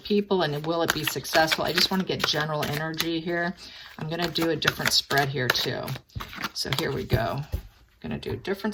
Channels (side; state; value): both; identical; correlation 1.00